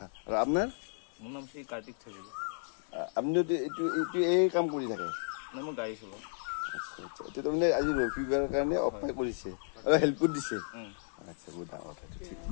আৰু আপোনাৰ মোৰ নাম শ্ৰী কাৰ্তিক থাকিব আপুনি এইটো এই কাম কৰি থাকে মই গাড়ী চলাওঁ আচ্ছা আচ্ছা এতিয়া তাৰমানে আজি ৰবিবাৰৰ কাৰণে অফাৰ কৰিছে আৰু হেল্প কৰি দিছে আচ্ছা বহুত ডাঙৰ কথা ঠিক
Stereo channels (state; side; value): silent; right; digital silence